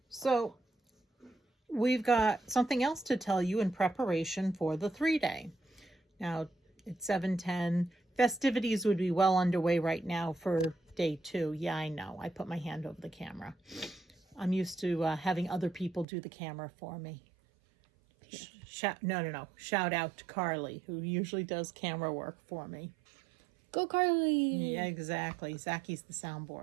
So we've got something else to tell you in preparation for the 3-day. Now it's 7:10. Festivities would be well underway right now for day 2. Yeah, I know. I put my hand over the camera. I'm used to having other people do the camera for me. No. Shout out to Carly, who usually does camera work for me. Go Carly. Yeah, exactly. Zacky's the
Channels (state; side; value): drops out; left; at 16.1 s